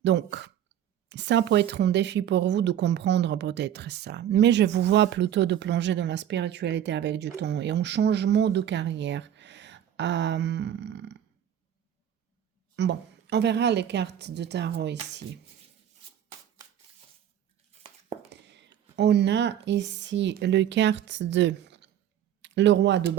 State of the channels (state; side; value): quieter; left; 10.4 dB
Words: Donc, ça peut être un défi pour vous de comprendre peut-être ça. Mais je vous vois plutôt de plonger dans la spiritualité avec du temps et un changement de carrière. Bon, on verra les cartes de tarot ici. On a ici le carte de le roi de